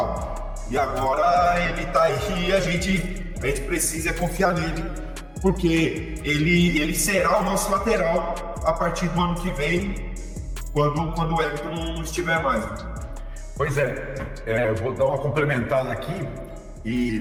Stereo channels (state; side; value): identical; both; correlation 1.00